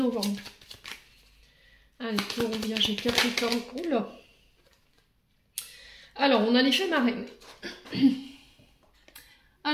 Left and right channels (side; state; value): both; identical; correlation 1.00